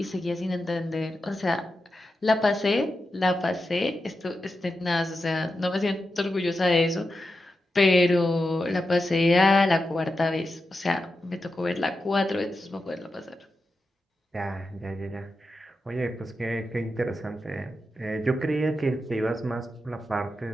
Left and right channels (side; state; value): both; normal; correlation 0.89